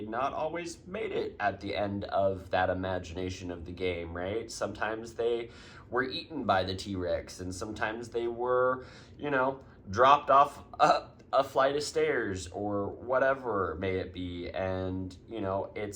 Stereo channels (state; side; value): identical; both; correlation 1.00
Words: not always made it at the end of that imagination of the game, right? Sometimes they were eaten by the T-Rex, and sometimes they were, dropped off a flight of stairs or whatever may it be. And,